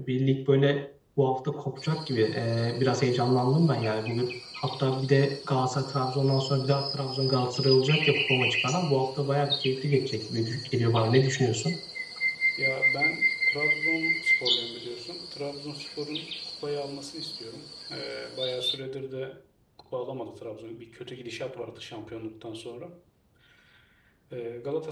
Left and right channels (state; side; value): identical; both; correlation 1.00